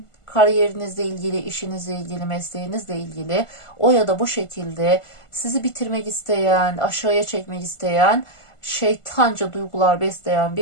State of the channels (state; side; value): late; right; 1.5 ms